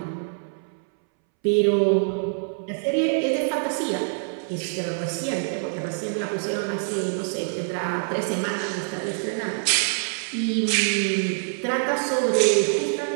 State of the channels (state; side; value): silent; left; 62 dB below the other